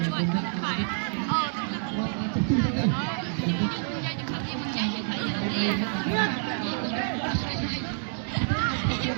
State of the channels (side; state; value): left; silent; 60 dB below the other